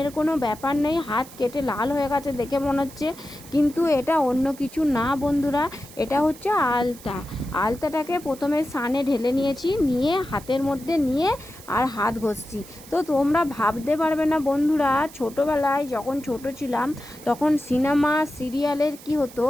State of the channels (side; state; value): right; noise; hiss, 19 dB below the sound